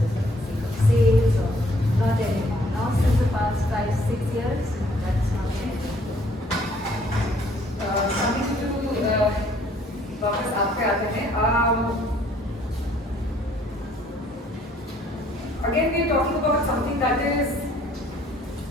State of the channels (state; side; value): normal; both; correlation 0.62